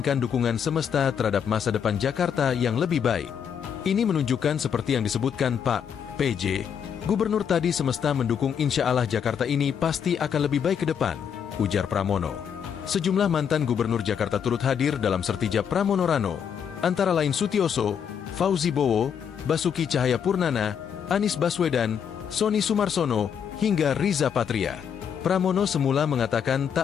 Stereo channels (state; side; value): quieter; right; 7.8 dB